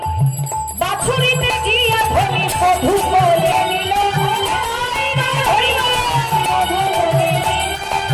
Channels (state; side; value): identical; both; correlation 1.00